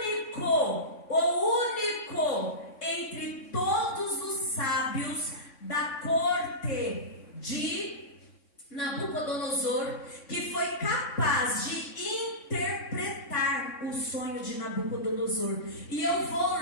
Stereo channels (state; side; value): late; right; 3.6 ms